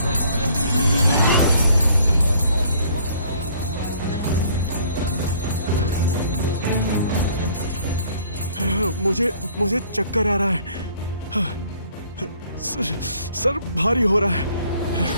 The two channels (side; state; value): both; inverted; correlation -0.59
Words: मुझे चक्कर आ रहा है। सर भारी हो रहा है।